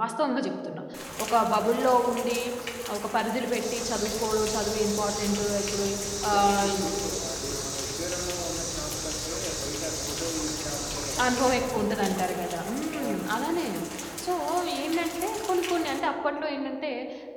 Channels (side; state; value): both; identical; correlation 1.00